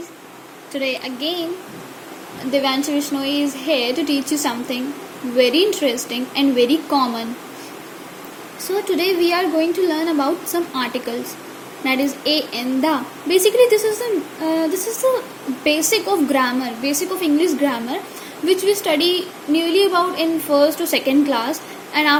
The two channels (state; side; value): identical; both; correlation 1.00